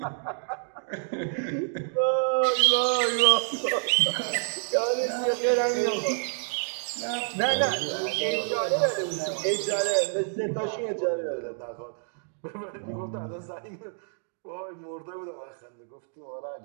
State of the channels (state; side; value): silent; left; digital silence